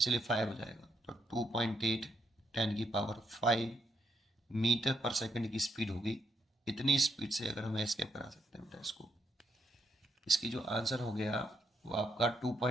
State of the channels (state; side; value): normal; both; correlation 0.78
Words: 5 हो जाएगा। तो 2.8 10 की पावर 5 मीटर पर सेकंड की स्पीड होगी। इतनी स्पीड से अगर हम एस्केप करा सकते हैं बेटा इसको, इसकी जो आंसर हो गया वो आपका